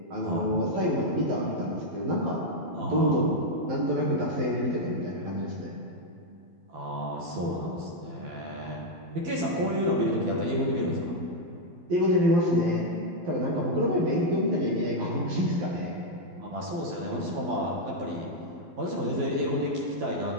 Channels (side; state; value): left; late; 12 ms